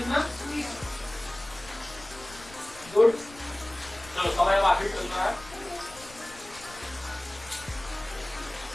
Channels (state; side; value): noise; left; rumble, 19 dB below the sound